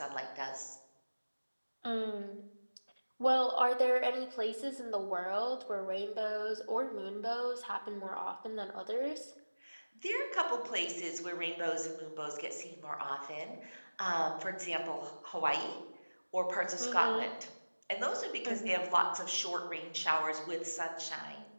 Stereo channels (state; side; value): inverted; both; correlation -1.00